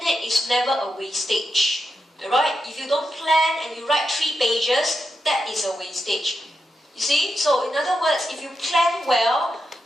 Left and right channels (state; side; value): normal; both; correlation 0.87